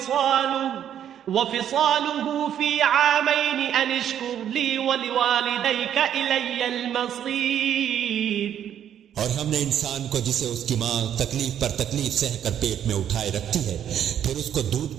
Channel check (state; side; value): quieter; left; 9.9 dB